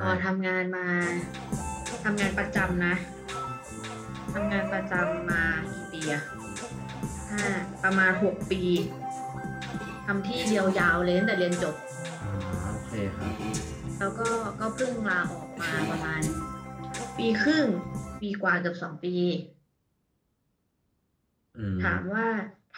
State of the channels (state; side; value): identical; both; correlation 1.00